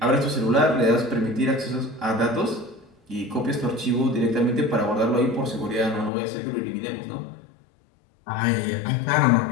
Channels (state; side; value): drops out; right; at 6.1 s